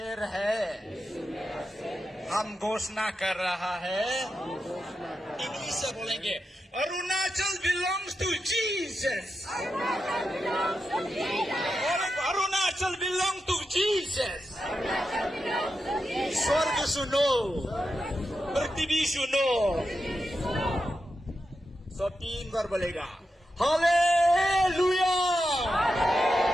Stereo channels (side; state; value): both; normal; correlation 0.88